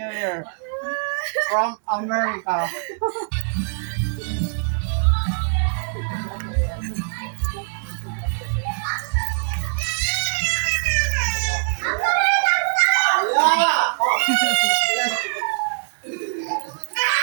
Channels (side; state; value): left; silent; digital silence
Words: Year from America.